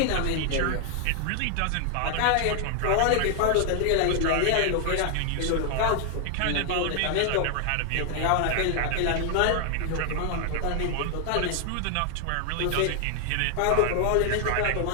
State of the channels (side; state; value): both; different; correlation 0.00